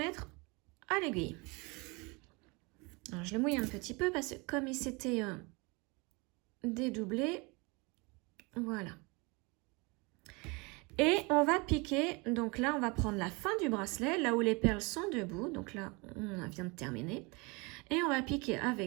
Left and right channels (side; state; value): left; quieter; 27.9 dB